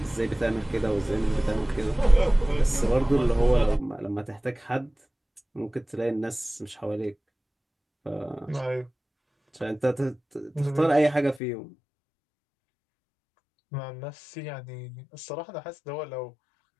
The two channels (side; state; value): right; drops out; at 11.4 s